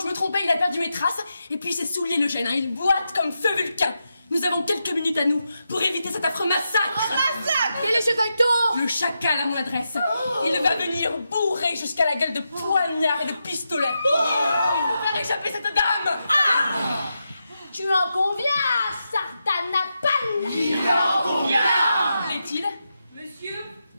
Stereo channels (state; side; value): inverted; both; correlation -0.87